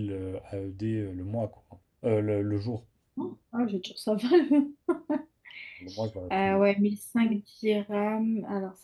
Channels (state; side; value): identical; both; correlation 1.00